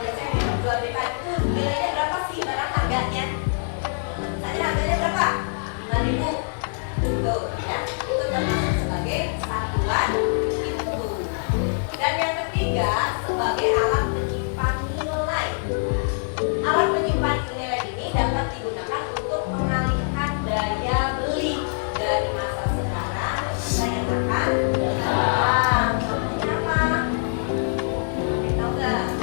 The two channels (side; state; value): right; silent; digital silence